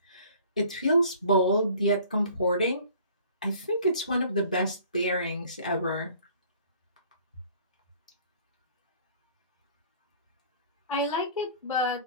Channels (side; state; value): both; inverted; correlation -0.52